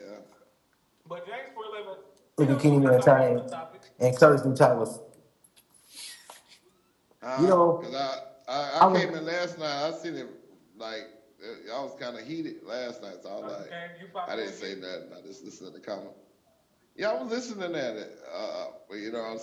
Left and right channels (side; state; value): both; identical; correlation 1.00